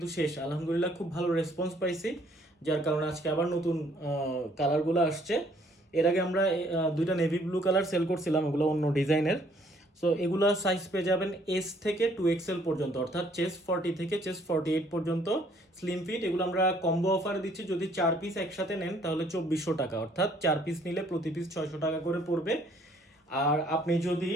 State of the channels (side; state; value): both; normal; correlation 0.63